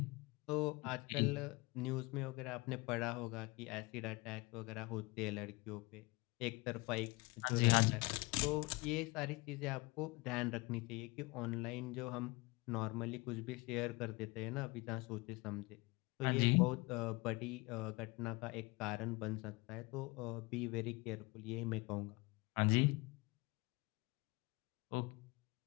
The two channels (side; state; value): right; quieter; 24.4 dB